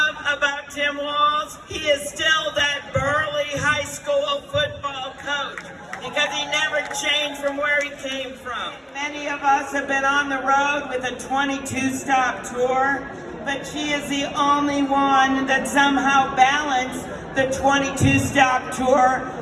about Tim Walz? He is still that burly high school football coach because he never changed from where he came from. Many of us have been on the road with a 22-stop tour, but she is the only one that somehow balanced the 22-stop tour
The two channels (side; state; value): both; identical; correlation 1.00